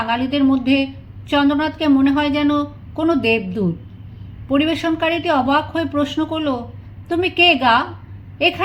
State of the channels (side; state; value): both; identical; correlation 1.00